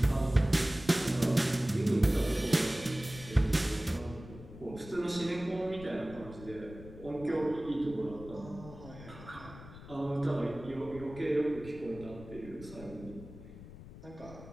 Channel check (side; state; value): left; noise; rumble, 15 dB below the sound